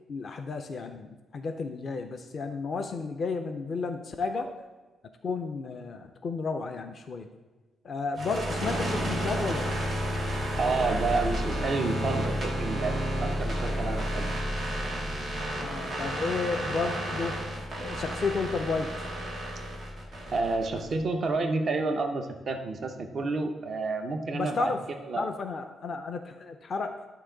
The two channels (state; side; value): normal; both; correlation 0.80